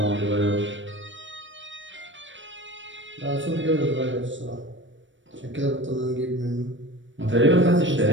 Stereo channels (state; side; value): late; left; 0.55 ms